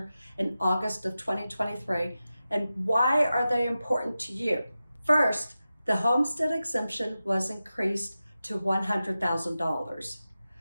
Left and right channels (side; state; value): both; inverted; correlation -0.93